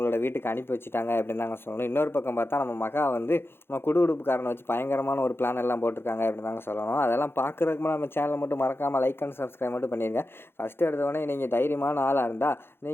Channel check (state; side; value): late; right; 0.11 ms